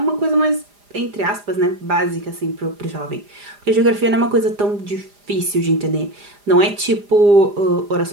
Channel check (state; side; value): late; left; 4.9 ms